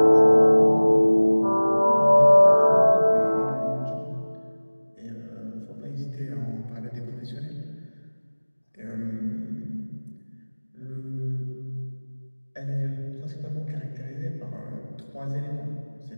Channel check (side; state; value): both; inverted; correlation -1.00